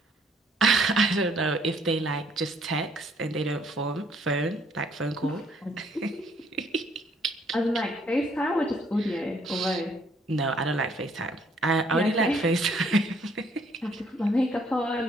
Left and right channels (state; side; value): normal; both; correlation 0.65